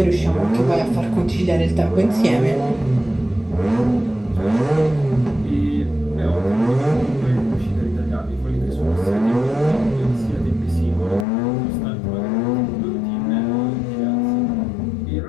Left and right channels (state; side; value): drops out; right; at 11.2 s